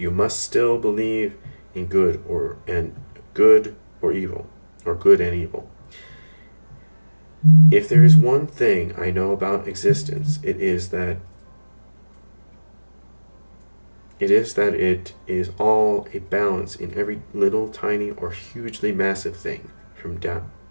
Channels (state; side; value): inverted; both; correlation -1.00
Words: must still believe in good or evil, or good and evil. If there is one thing I know about existence, it is that it is all a balance in every little tiny or hugely massive thing,